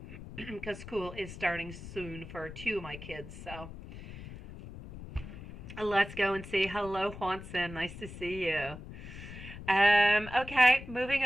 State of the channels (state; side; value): noise; left; rumble, 13 dB below the sound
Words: because school is starting soon for two of my kids. So let's go and say hello, Juanson. Nice to see you. Okay, moving